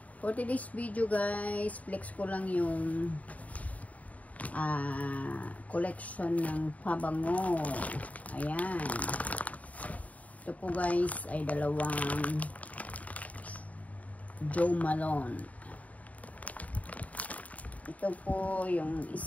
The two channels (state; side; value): late; right; 0.070 ms